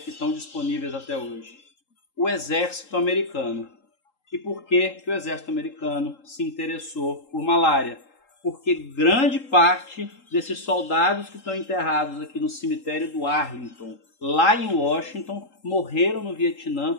estão disponíveis até hoje? O exército americano. E por que o exército americano se interessou por malária? Porque grande parte desses soldados que estão enterrados aqui no cemitério do Arlington, lá em Washington, morreram no Vietnã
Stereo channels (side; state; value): right; late; 3.8 ms